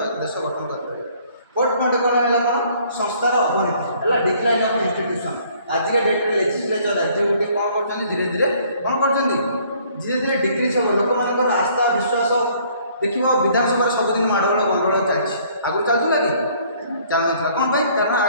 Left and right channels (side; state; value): both; inverted; correlation -0.60